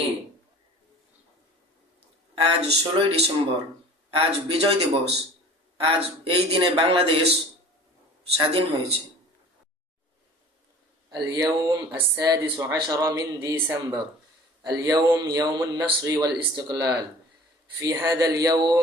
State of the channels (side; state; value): both; normal; correlation 0.44